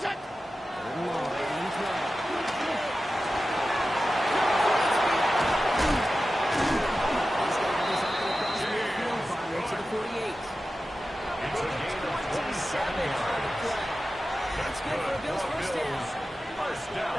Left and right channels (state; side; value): normal; both; correlation 0.93